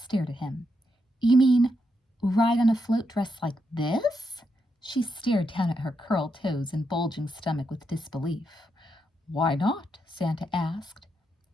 at him. You mean ride on a float dressed like this? She stared down at her curled toes and bulging stomach with disbelief. Why not? Santa asked.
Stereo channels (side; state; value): both; normal; correlation 0.82